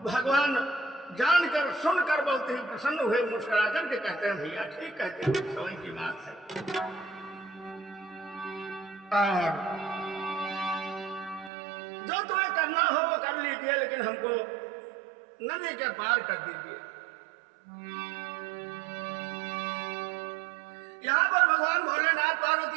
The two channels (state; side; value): drops out; left; at 11.5 s